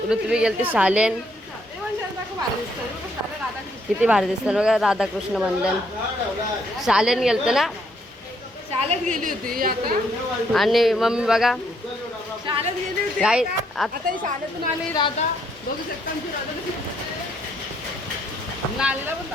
ऋत्वी गेलते शालेन. किती भारी दिसतात बघा. राधाकृष्ण मंदिर शालेन गेलते ना, शाळेत गेली होती आता. आणि मम्मी बघा शाळेत गेली होती काय आता ही शाळेतून आली राधा. बघू शकता आमची राधा कशी नालीला पण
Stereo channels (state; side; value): normal; both; correlation 0.71